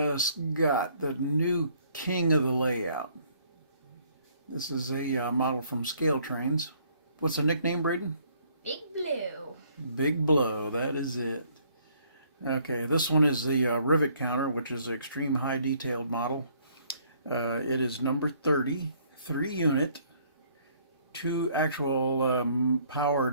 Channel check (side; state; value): both; inverted; correlation -0.63